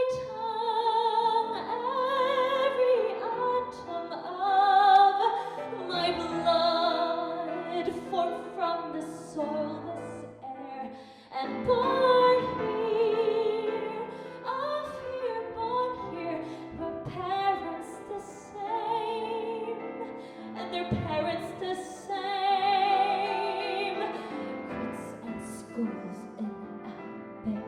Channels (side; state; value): both; identical; correlation 1.00